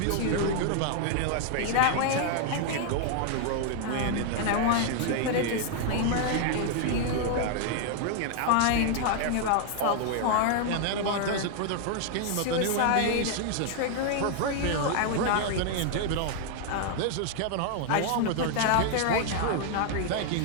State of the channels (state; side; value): different; both; correlation 0.00